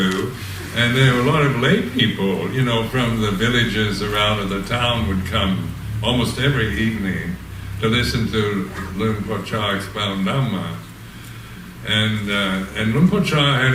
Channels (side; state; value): both; identical; correlation 1.00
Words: And there were a lot of lay people, from the villages around the town would come almost every evening to listen to Luang Por Chah expound Dhamma. And Luang Por Chah had